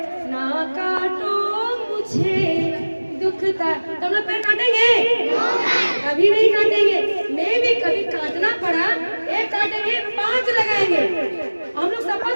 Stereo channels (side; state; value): both; inverted; correlation -1.00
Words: ना काटो मुझे दुखता। तो हम लोग पेड़ काटेंगे? कभी नहीं काटेंगे। मैं भी कभी काटना पड़ा, एक काटेंगे 5 लगाएंगे। हम लोग